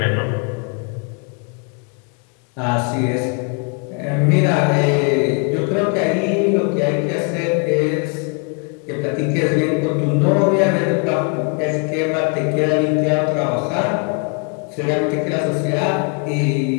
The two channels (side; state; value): right; quieter; 36.0 dB